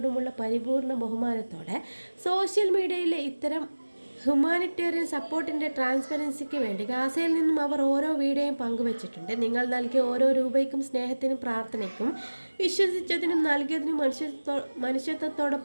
പരിപൂർണ ബഹുമാനത്തോടെ സോഷ്യൽ മീഡിയയിലെ ഇത്തരം ഹ്യൂമാനിറ്റേറിയൻ സപ്പോർട്ടിൻ്റെ ട്രാൻസ്പെറൻസിക്ക് വേണ്ടി ഗാസയിൽ നിന്നും അവർ ഓരോ വീഡിയോയും പങ്കുവച്ചിട്ടുണ്ട്. നിങ്ങൾ നൽകിയ ഓരോ രൂപയ്ക്കും സ്നേഹത്തിനും പ്രാർത്ഥനയ്ക്കും വിശ്വസിച്ചതിനും നൽകിയതിനും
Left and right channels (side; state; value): both; inverted; correlation -1.00